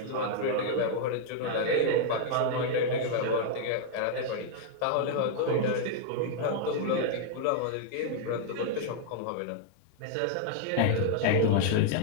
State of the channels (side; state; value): both; different; correlation -0.01